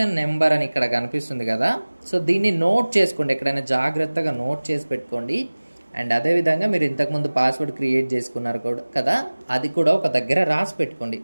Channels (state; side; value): inverted; both; correlation -1.00